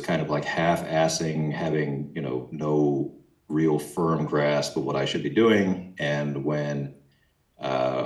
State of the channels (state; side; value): identical; both; correlation 1.00